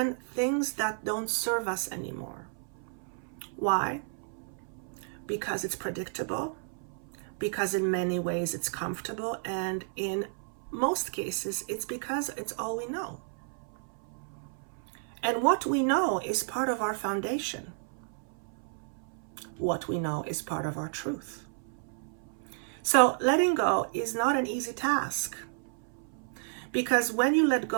things that don't serve us anymore. Why? Because it's predictable, because in many ways it's comfortable, and in most cases it's because it's all we know. And what we know is part of our foundation. What we know is part of our truth. So letting go is not an easy task, because when you let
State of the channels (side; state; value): left; silent; 57 dB below the other